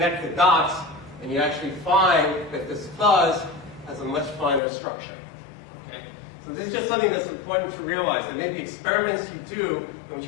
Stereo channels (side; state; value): right; drops out; at 4.6 s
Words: the dots, and you actually find that this fuzz has a much finer structure. Okay? So this is just something that's important to realize. And maybe experiments you do in which